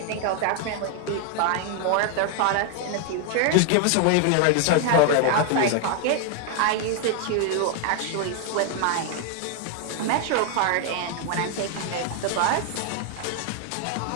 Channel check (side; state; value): both; different; correlation 0.00